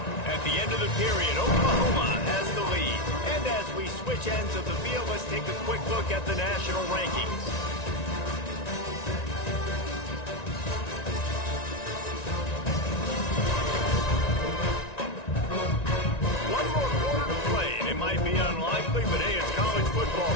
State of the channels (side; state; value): right; late; 1.9 ms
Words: At the end of the period, Oklahoma has the lead. And as we switch ends of the field, let's take a quick look at the national rankings. One more quarter to play, and it might be unlikely, but hey, it's college football.